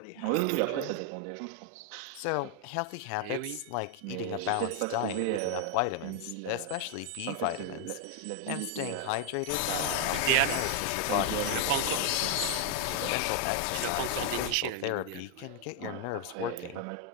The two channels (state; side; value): different; both; correlation 0.00